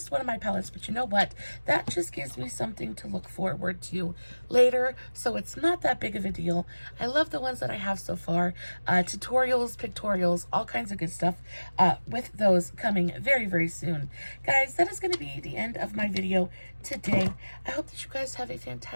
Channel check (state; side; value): inverted; both; correlation -1.00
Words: one of my palettes, but you know what? That just gives me something to look forward to later, so it's not that big of a deal. I love the ones that I have so far. Tutorials, pictorials, all kinds of good stuff with those coming very soon. Guys, that is going to be the end of my video today. I hope that you guys have a